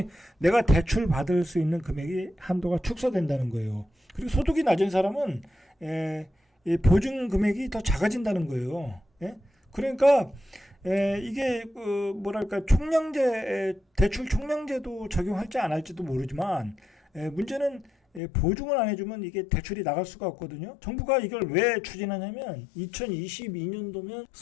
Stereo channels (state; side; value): drops out; right; at 18.2 s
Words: 내가 대출 받을 수 있는 금액이 한도가 축소된다는 거예요. 그리고 소득이 낮은 사람은 이 보증 금액이 더 작아진다는 거예요. 예? 그러니까 이게 뭐랄까 대출 총량제도 적용할지 안 할지도 모르지만 문제는 보증을 안 해주면 이게 대출이 나갈 수가 없거든요. 정부가 이걸 왜 추진하냐면 2022년도면